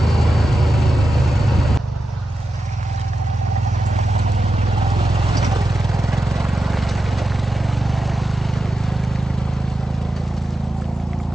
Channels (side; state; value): both; normal; correlation 0.90